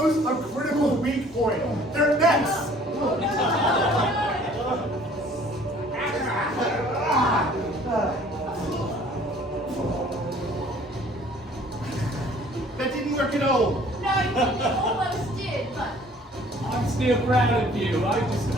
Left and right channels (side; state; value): both; normal; correlation 0.54